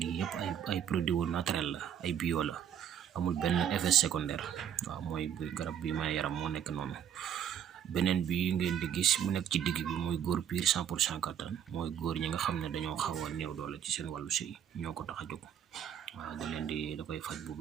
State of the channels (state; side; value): quieter; left; 9.3 dB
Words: yëpp ay produit naturel la ay bio la amul benn effet secondaire waaw mooy garab bi may yaram moo nekk noonu. beneen bi ngeen di gis mu nekk ci digg bi mooy góor piir 100% kattan mooy góor ñi nga xam ne dañoo xaw a néew doole ci seen wàllu sëy ñoo ko tax a jóg waaw da koy faj bu